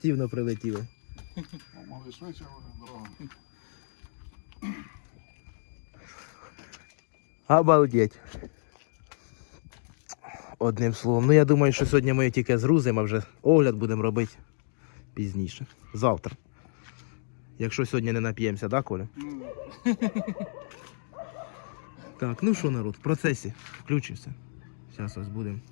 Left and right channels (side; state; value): right; silent; digital silence